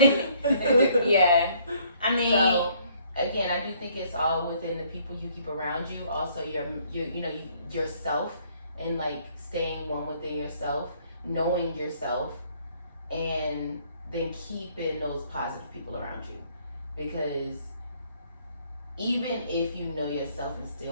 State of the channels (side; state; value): both; inverted; correlation -0.63